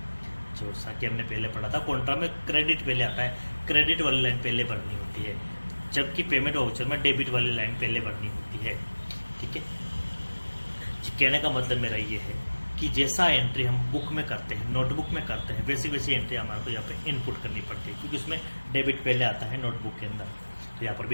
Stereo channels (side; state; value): both; inverted; correlation -1.00